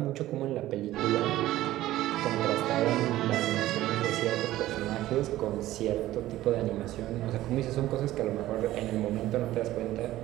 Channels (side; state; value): left; quieter; 15.1 dB